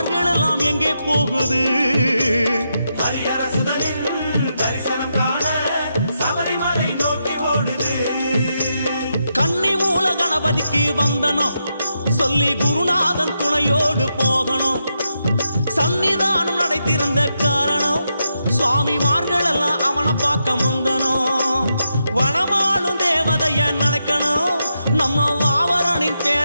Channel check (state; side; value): inverted; both; correlation -0.84